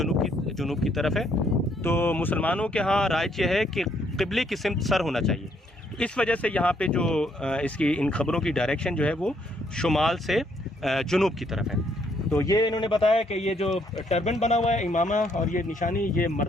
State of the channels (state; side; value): normal; both; correlation 0.70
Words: की तरफ है। तो मुसलमानों के यहाँ राइज यह है कि क़िबले की सिमत सर होना चाहिए। तो इस वजह से यहाँ पे जो इसकी इन खबरों की डायरेक्शन जो है वो शुमाल से जुनूब की तरफ है। तो ये इन्होंने बताया कि ये जो टर्बन बना हुआ है, इमामा और ये निशानी, ये